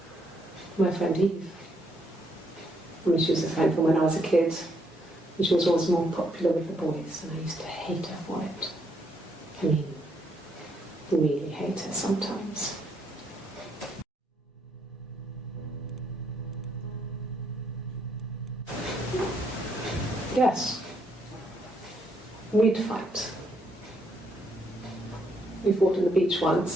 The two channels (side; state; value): both; normal; correlation 0.73